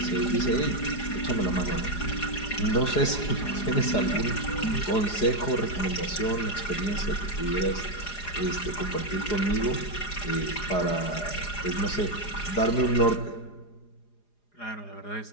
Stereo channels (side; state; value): right; late; 4.9 ms